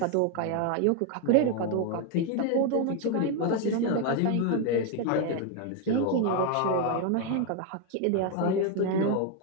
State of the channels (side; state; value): both; different; correlation 0.01